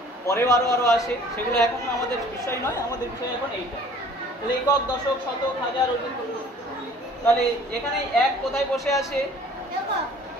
পরেও আরো আরো আসে, সেগুলো এখন আমাদের বিষয় নয়, আমাদের বিষয় এখন এইটা। তাহলে একক, দশক, শতক, হাজার, অযুত। তাহলে এখানে 1 কোথায় বসে আছে?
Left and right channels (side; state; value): both; normal; correlation 0.52